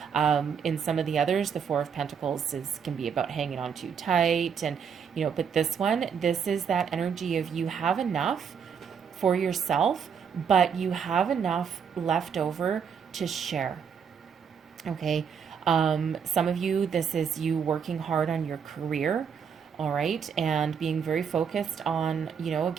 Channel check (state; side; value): quieter; left; 7.0 dB